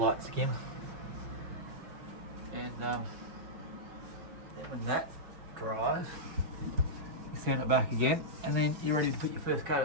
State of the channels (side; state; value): left; late; 5.6 ms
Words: skim. And then when that dries, you sand it back again, and then you're ready to put your first coat